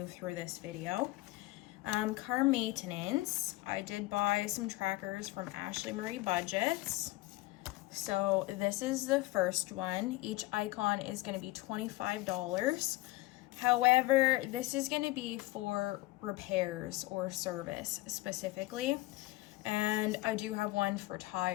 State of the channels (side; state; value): right; quieter; 19.3 dB